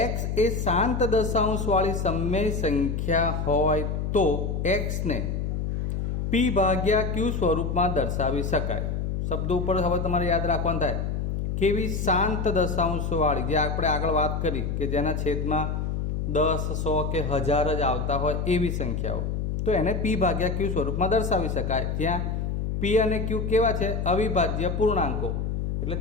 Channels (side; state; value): left; noise; hum, 1 dB below the sound